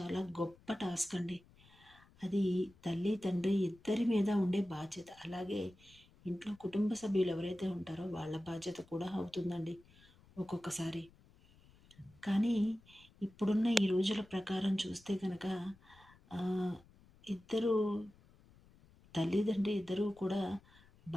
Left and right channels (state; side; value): noise; left; rumble, 27 dB below the sound